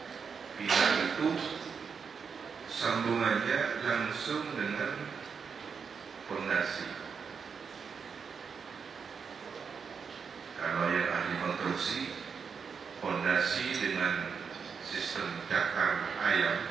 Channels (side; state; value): left; quieter; 6.0 dB